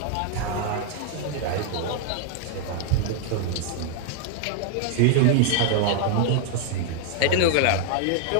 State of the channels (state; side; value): different; both; correlation 0.00